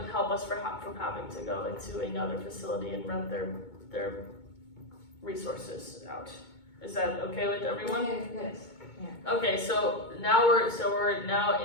help us from having to go into another facility and rent their resources out. Is that okay with everyone? Yes. Okay, so now we're now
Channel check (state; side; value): late; right; 2.2 ms